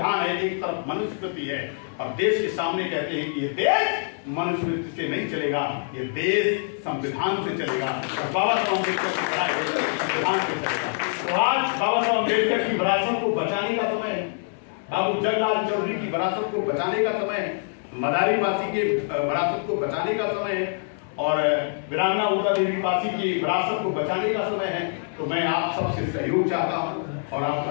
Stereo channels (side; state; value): right; silent; digital silence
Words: है, एक तरफ मनुस्मृति है, और देश के सामने कहते हैं कि ये देश मनुस्मृति से नहीं चलेगा, ये देश संविधान से चलेगा, और बाबा साहब अम्बेडकर की पढ़ाई संविधान से चलेगा। तो आज बाबा साहब अम्बेडकर की विरासत को बचाने का समय है, बाबू जगलाल चौधरी की विरासत को बचाने का समय है, मदारी पासी के विरासत को बचाने का समय है, और वीरांगना उषा देवी पासी की विरासत को बचाने का समय है। तो मैं आप सबसे सहयोग चाहता हूं और